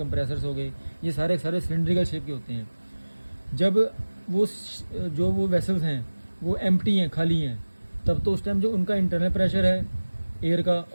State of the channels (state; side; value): inverted; both; correlation -1.00